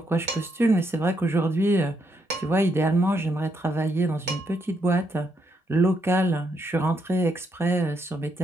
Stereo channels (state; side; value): normal; both; correlation 0.77